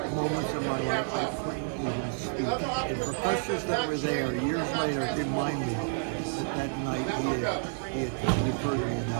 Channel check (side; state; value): left; silent; digital silence